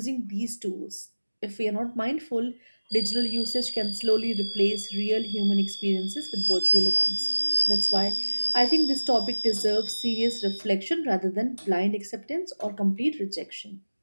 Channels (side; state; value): both; inverted; correlation -1.00